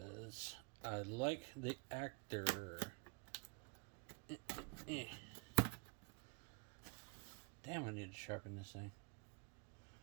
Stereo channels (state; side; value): quieter; left; 34.6 dB